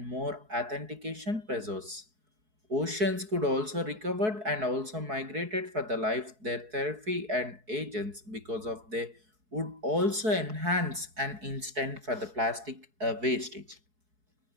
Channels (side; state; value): left; late; 4.7 ms